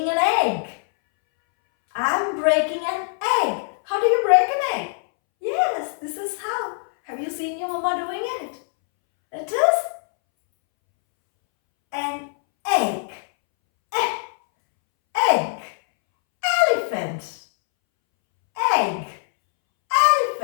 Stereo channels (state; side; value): silent; right; 64 dB below the other